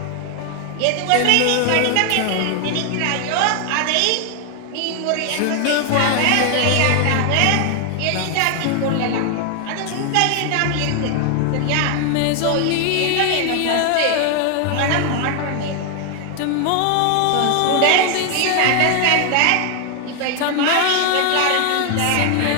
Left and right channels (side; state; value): both; different; correlation 0.00